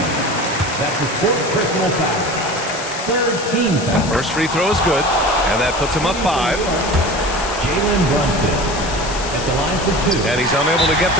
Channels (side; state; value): left; noise; hiss, 10 dB below the sound